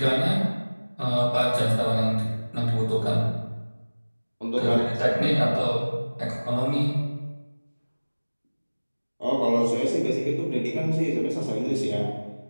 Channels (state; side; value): inverted; both; correlation -1.00